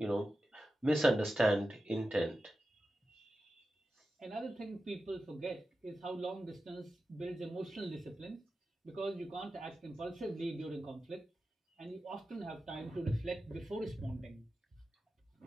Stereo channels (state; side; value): normal; both; correlation 0.92